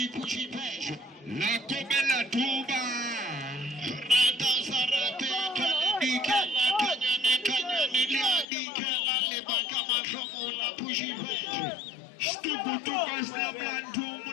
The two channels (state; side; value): drops out; right; at 8.5 s